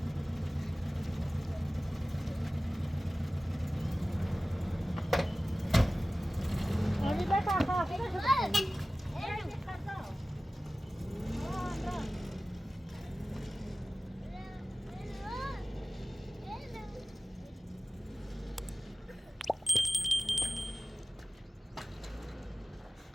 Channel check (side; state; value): both; normal; correlation 0.97